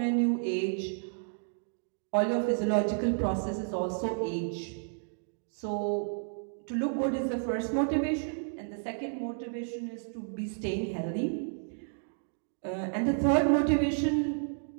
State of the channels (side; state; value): left; silent; digital silence